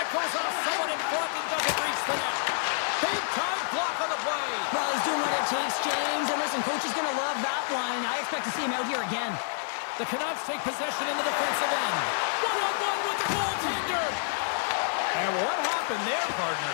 goes off someone in front and doesn't reach the net. Big time block on the play. Well, he's doing what it takes, James. And listen, coach is going to love that one. I expect to see him out here again. The Canucks take possession in the defensive end. One-on-one with the goaltender. And what happened there, partner?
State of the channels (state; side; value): silent; right; digital silence